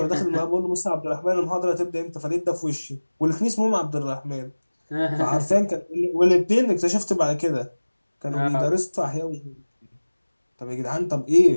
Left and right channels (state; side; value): inverted; both; correlation -1.00